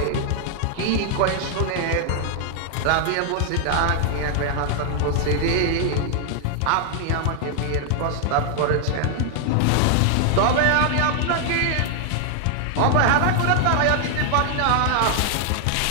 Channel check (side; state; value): both; different; correlation 0.00